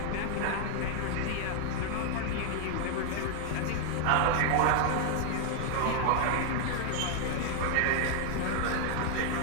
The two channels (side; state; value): both; different; correlation 0.00